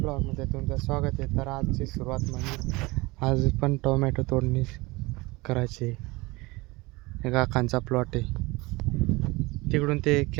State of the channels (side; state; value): left; quieter; 23.1 dB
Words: ब्लॉगमध्ये तुमचं स्वागत आहे. तर आजची सुरुवात म्हणजे आज पण टोमॅटो तोडणी करायची. काकांचा प्लॉट आहे, तिकडून ते